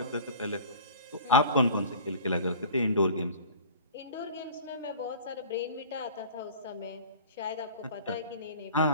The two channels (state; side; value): inverted; both; correlation -0.42